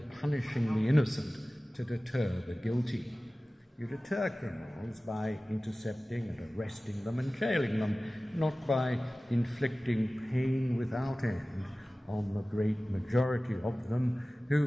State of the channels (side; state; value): both; normal; correlation 0.97